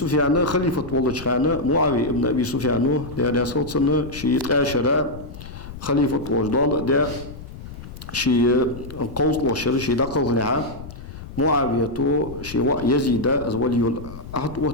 خليفة والله خانة معاوية ابن أبي سفيان ده صوت سنة شيء عشرة خليفة وجدال ده شيء قوس وشر شيء دقل نعم معاوية تو شيء يزيد از ولي العهد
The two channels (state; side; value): noise; left; rumble, 13 dB below the sound